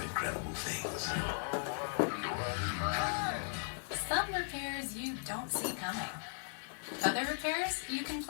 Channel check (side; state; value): right; silent; digital silence